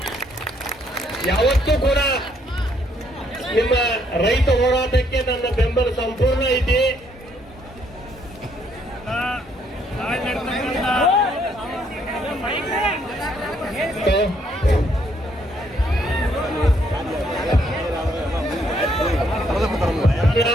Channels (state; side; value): normal; both; correlation 0.70